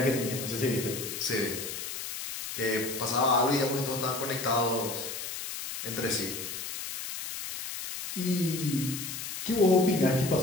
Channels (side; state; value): left; noise; hiss, 6 dB below the sound